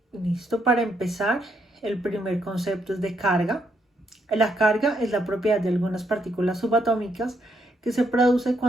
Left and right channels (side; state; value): both; normal; correlation 0.76